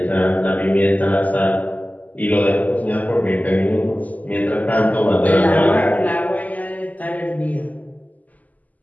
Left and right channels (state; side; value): late; right; 0.078 ms